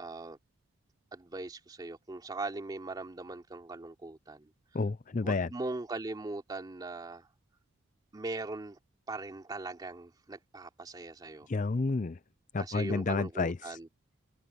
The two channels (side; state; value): both; normal; correlation 0.54